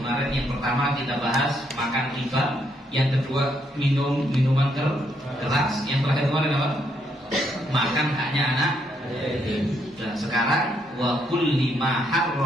yang pertama kita bahas makan riba, yang kedua minuman keras, yang terakhir kemarin apa? Makan haknya anak. Dan sekarang wa kulli ma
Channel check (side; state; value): both; normal; correlation 0.74